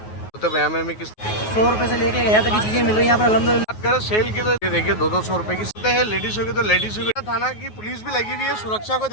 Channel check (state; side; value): late; right; 9.4 ms